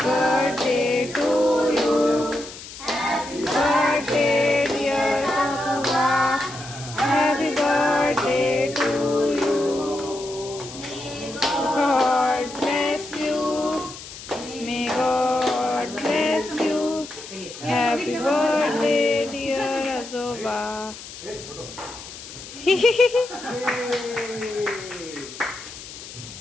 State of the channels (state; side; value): noise; left; hiss, 14 dB below the sound